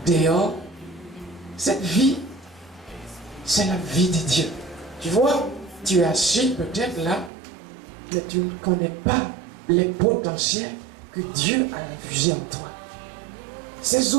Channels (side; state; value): left; drops out; at 7.3 s